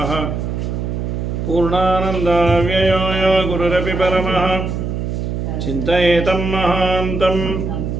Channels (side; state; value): right; noise; hum, 3 dB below the sound